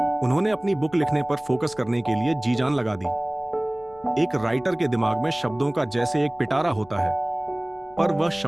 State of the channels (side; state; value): left; noise; rumble, 25 dB below the sound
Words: उन्होंने अपनी बुक लिखने पर फोकस करने के लिए जी जान लगा दी। एक राइटर के दिमाग में शब्दों का जैसे एक पिटारा होता है, पर वह